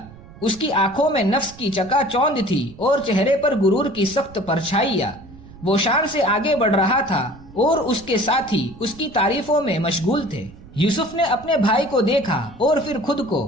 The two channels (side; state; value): right; noise; rumble, 20 dB below the sound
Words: اس کی آنکھوں میں نفس کی چکا چوند تھی اور چہرے پر غرور کی سخت پرچھائیاں۔ وہ شان سے آگے بڑھ رہا تھا اور اس کے ساتھی اس کی تعریفوں میں مشغول تھے۔ یوسف نے اپنے بھائی کو دیکھا اور پھر خود کو۔